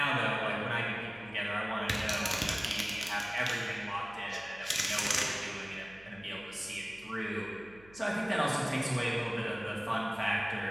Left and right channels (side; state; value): right; noise; hum, 24 dB below the sound